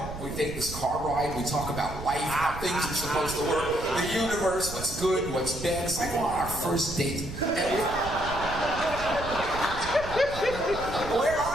we take this car ride, we talk about life, how things are supposed to work, the universe, what's good, what's bad. It's like on our first date. Where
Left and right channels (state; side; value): noise; right; rumble, 11 dB below the sound